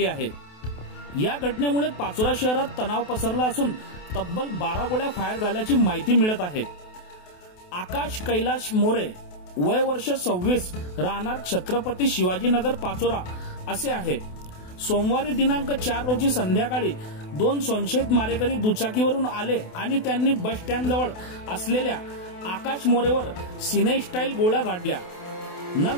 आहे। या घटनेमुळे पाचोरा शहरात तणाव पसरला असून तब्बल 12 गोळ्या फायर झाल्याची माहिती मिळत आहे। आकाश कैलाश मोरे, वय वर्ष 26, राहणार छत्रपती शिवाजीनगर पाचोरा असे आहे। सोमवारी दिनांक 4 रोजी संध्याकाळी 2 संशयित मारेकरी दुचाकीवरून आले आणि त्यांनी बस स्टँड जवळ असलेल्या आकाश मोरेवर सिनेस्टाईल गोळ्या झाडल्या।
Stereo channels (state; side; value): late; right; 28 ms